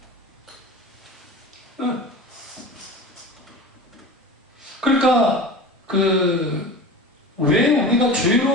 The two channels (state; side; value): normal; both; correlation 0.33